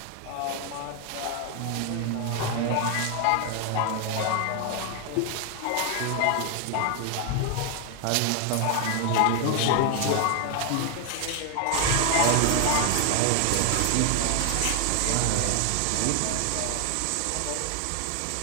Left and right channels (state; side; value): different; both; correlation 0.00